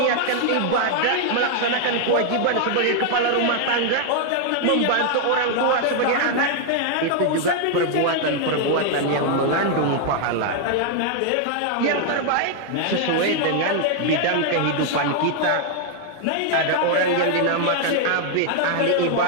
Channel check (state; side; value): different; both; correlation 0.00